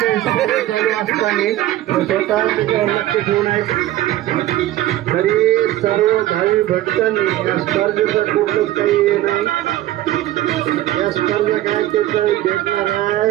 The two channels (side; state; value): left; quieter; 14.5 dB